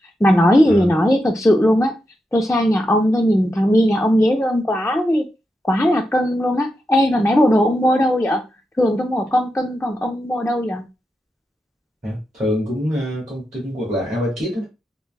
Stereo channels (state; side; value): normal; both; correlation 0.87